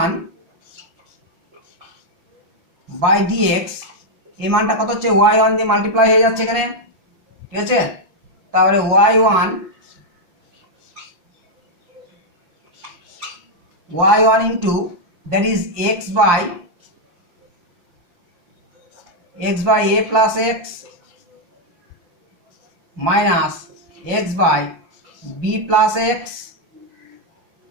by d x এই মানটা কত হচ্ছে, ওয়াই ওয়ান দিয়ে মাল্টিপ্লাই হয়ে যাচ্ছে এখানে, ঠিক আছে। তারপরে y one into that is x by a plus x minus x by B plus x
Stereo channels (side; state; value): left; late; 5.8 ms